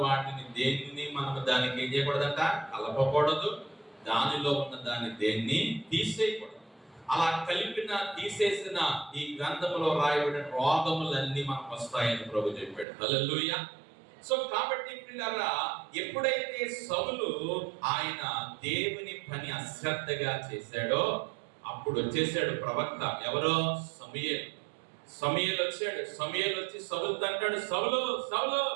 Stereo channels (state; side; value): drops out; left; at 12.9 s